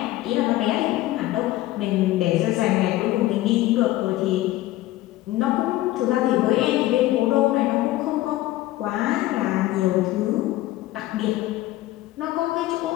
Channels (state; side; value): quieter; right; 16.3 dB